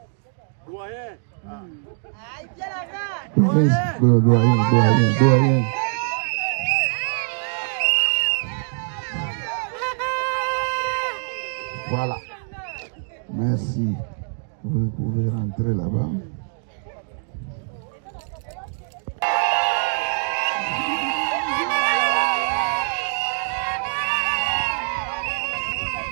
Doyen. Voilà. Merci. Vous pouvez rentrer là-bas.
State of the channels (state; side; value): silent; left; 63 dB below the other